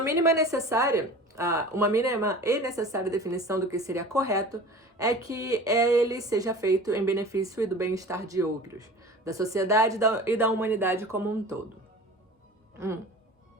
mínima e necessária definição do que seria correto é que ele seja feito em benefício e do bem-estar de outros, da sociedade e da humanidade como um todo.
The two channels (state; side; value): normal; both; correlation 0.39